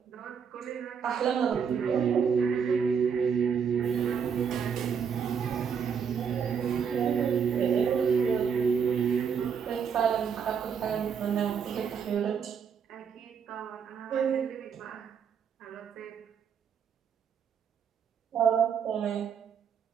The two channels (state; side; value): quieter; left; 6.9 dB